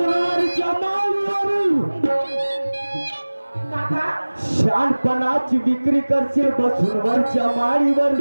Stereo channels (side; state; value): both; inverted; correlation -1.00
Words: माळीवर काका शहाणपणाची विक्री करशील बसवरच्या माळीवर